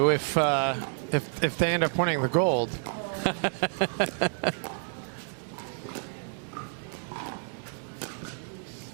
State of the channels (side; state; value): left; silent; 58 dB below the other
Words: if they end up winning the gold.